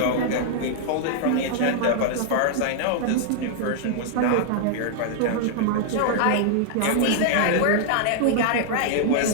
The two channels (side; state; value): both; different; correlation -0.01